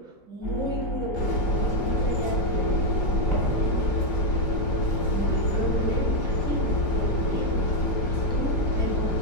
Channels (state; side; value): late; right; 5.0 ms